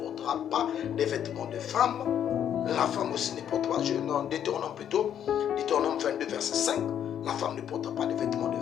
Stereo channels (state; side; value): quieter; right; 9.5 dB